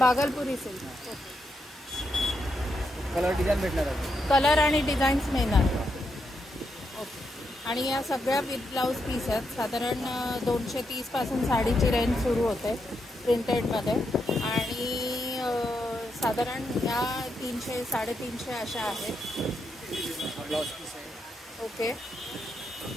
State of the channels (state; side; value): normal; both; correlation 0.82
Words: सिल्क. कलर डिझाईन भेटणार आहे. कलर आणि डिझाईन्स मिळणार. ओके, आणि या सगळ्या विथ ब्लाउज पीस आहेत. साधारण 230 पासून साडीची रेंज सुरू होते प्रिंटेडमध्ये आणि साधारण या 300 350 अशा आहेत. ब्लाउज पीस आहे. ओके,